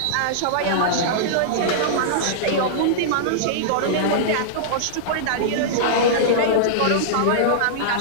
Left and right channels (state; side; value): different; both; correlation -0.02